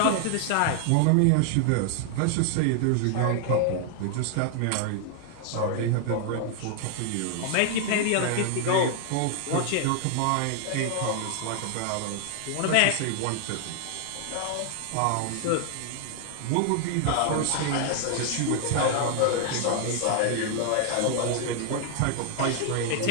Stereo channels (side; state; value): both; different; correlation 0.00